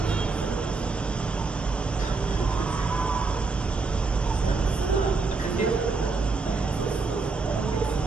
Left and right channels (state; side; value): quieter; left; 4.1 dB